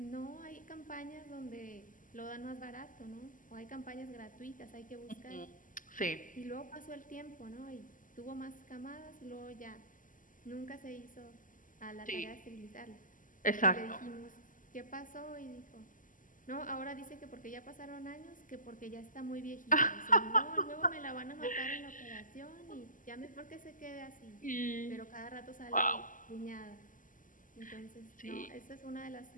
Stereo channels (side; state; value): right; late; 0.38 ms